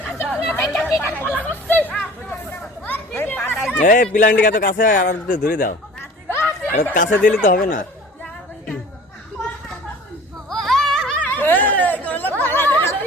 প্লান্টিকা তো কাছে আর ধরে দাও, কাছে দিলে তো হবে না।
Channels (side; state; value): both; normal; correlation 0.44